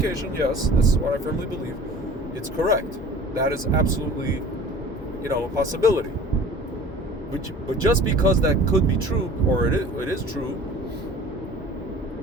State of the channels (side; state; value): both; normal; correlation 0.45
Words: Yes, this is what I firmly believe. It's correct. That is absolutely, a possibility. But just because that could be true, or it is true,